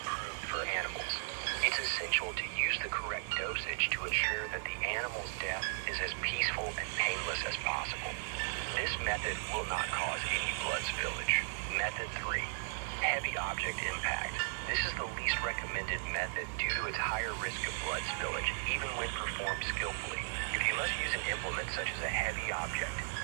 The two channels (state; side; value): silent; left; 54 dB below the other